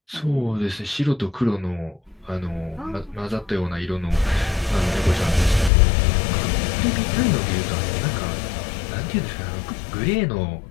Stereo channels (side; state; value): right; drops out; at 5.7 s